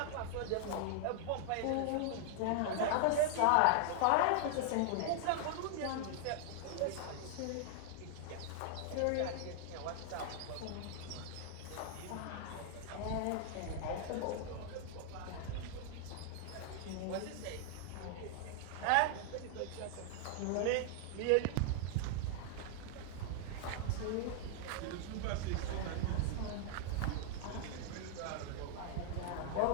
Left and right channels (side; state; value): both; different; correlation 0.00